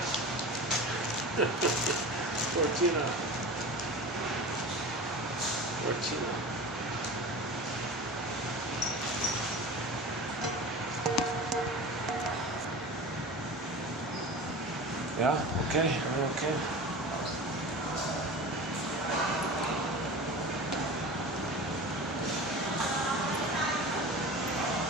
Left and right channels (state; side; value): normal; both; correlation 0.33